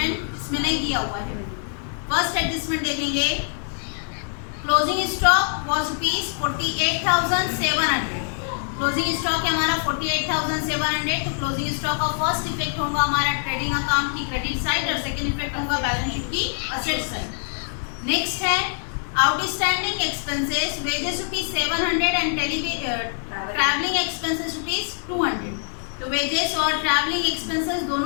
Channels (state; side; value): silent; right; digital silence